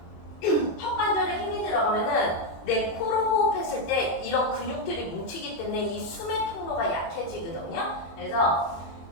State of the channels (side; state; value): right; late; 24 ms